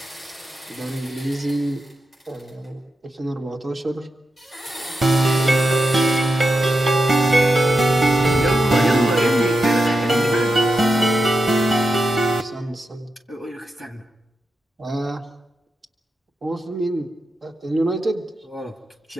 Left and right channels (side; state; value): both; normal; correlation 0.88